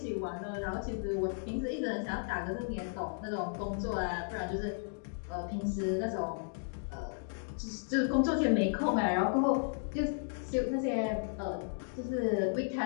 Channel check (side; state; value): right; silent; digital silence